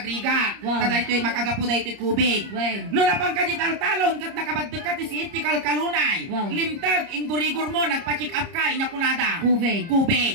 Wow. Tada ito'y makagapo da ito'y kubig. Wow. No napang kajital-talon, kat nakabaddag ka ti si itikal kalunay. Wow. Limtag, ingurigor mo, nagpa-check up ka, inyakunada.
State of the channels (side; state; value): left; late; 30 ms